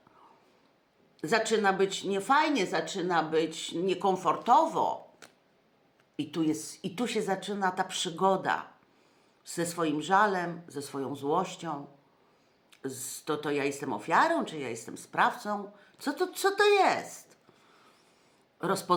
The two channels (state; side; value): identical; both; correlation 1.00